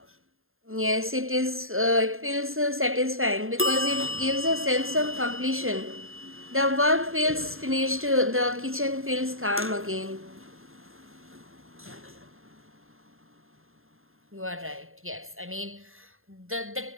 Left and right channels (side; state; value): left; late; 0.61 ms